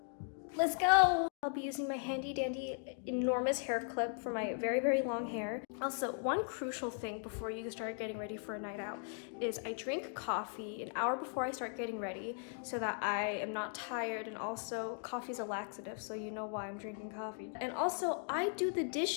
Let's go! I'll be using my handy dandy enormous hair clip for my very, very long hair. Also, one crucial thing before you start getting ready for a night out is I drink coffee an hour before I start getting ready so that I am not tired, and also coffee's a laxative, so you know why I'm drinking coffee. And also, I do the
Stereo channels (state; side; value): silent; right; 52 dB below the other